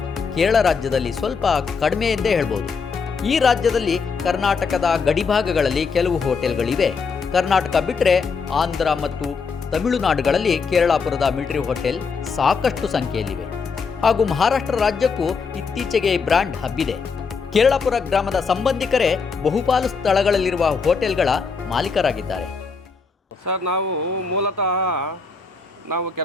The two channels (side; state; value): right; quieter; 5.1 dB